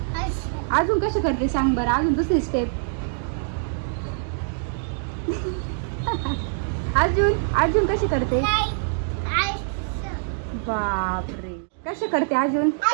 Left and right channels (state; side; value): silent; left; digital silence